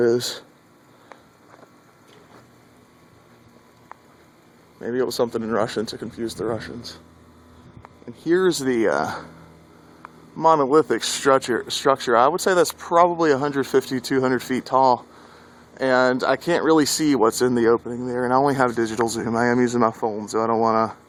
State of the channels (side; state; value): both; identical; correlation 1.00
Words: Maybe it was something in Russian to confuse the Russians. And here's the monolithic structure. I would say that's probably 150, 200 feet tall. And I can't really see what's in the opening there. And I only have digital zoom. I am using my phone, so I don't want to